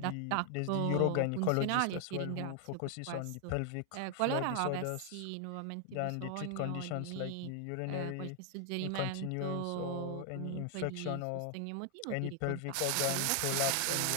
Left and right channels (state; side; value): different; both; correlation 0.00